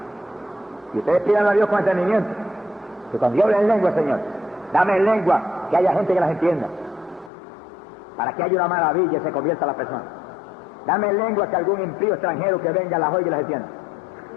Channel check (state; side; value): drops out; right; at 7.3 s